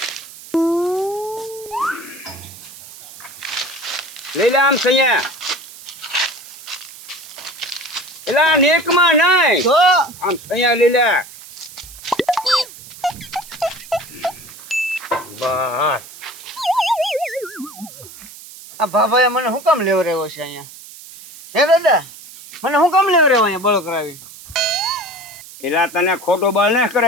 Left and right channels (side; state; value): right; noise; hiss, 17 dB below the sound